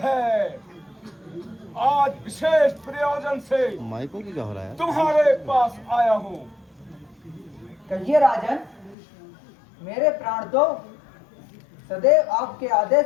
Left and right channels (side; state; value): right; drops out; at 9.0 s